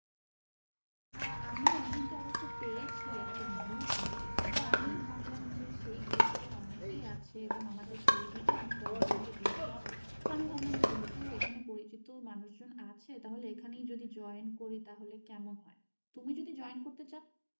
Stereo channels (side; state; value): both; inverted; correlation -1.00